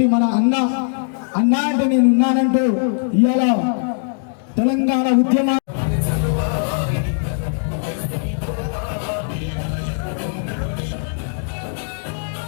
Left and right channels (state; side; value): silent; right; digital silence